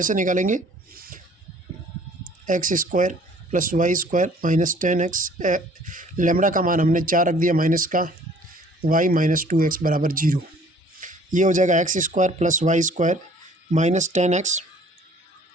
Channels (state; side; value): normal; both; correlation 0.55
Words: निकालेंगे? X square plus Y square minus 10x, lambda का मान हमने 4 रख दिया माइनस का, y माइनस 2x बराबर 0। ये हो जाएगा x square plus Y square minus 10x